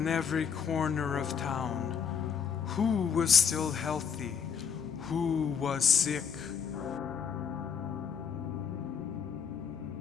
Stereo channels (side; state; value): right; quieter; 6.9 dB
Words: every corner of town. Who was still healthy? Who was sick?